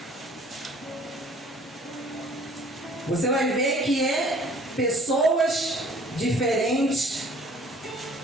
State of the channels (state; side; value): normal; both; correlation 0.53